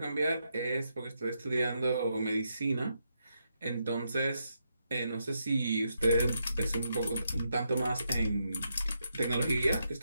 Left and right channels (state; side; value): inverted; both; correlation -0.81